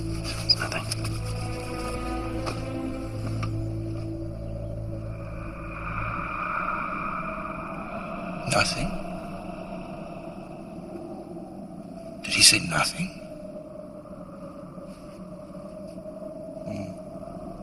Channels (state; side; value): identical; both; correlation 1.00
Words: It's nothing. Nothing? Did he say nothing?